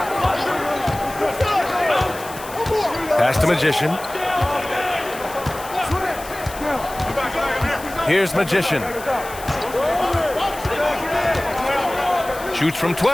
Pass to Magician. Here's Magician. Shoots from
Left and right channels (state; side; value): noise; left; hiss, 15 dB below the sound